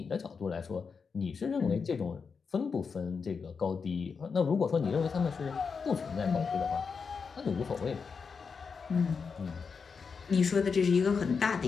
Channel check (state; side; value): quieter; right; 5.5 dB